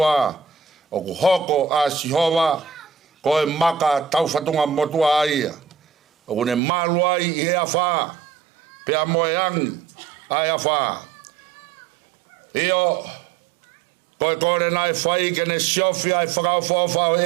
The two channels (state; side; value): drops out; left; at 6.6 s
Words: o ku hoko a sihova koe maka tauwhatunga motua aia. O ku ne maluai i he awha pea moe angi ai awha. Io koe kore nai whai kene siofi ai whakauwhawha o